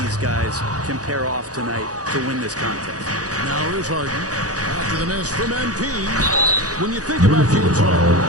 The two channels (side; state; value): left; late; 0.67 ms